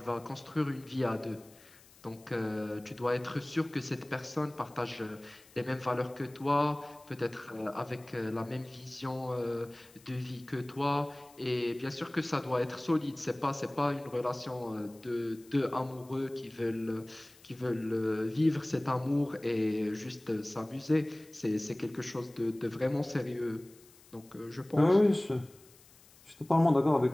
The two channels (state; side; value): noise; left; hiss, 25 dB below the sound